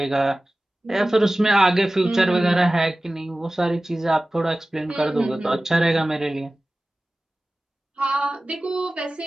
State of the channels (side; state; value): both; normal; correlation 0.97